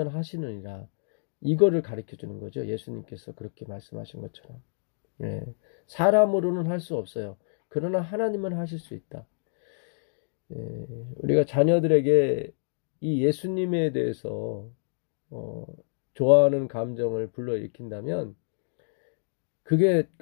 하시느니라 이거를 가르쳐 주는 거죠. 예수님께서 그렇게 말씀하신 것처럼 사람으로는 할 수 없어요. 그러나 하나님은 하실 수 있다. 우리가 자녀들에게 이 예수님에 대해서 좋아하는 감정을 불러일으킨다면 그게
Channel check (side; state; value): right; silent; digital silence